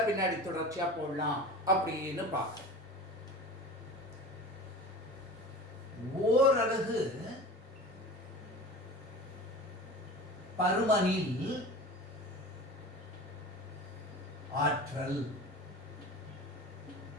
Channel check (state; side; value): normal; both; correlation 0.35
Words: பின்னாடி தொடர்ச்சியா போடலாம் அப்படின்னு பார்க்கிறேன். ஓரலகு பருமனில் ஆற்றல்,